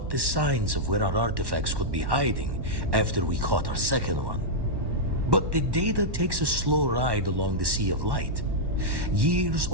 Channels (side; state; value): left; late; 1.1 ms